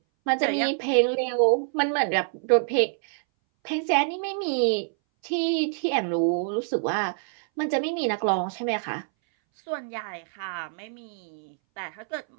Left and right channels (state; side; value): silent; left; 60 dB below the other